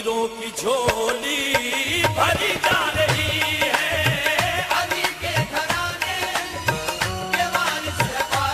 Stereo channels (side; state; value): both; identical; correlation 1.00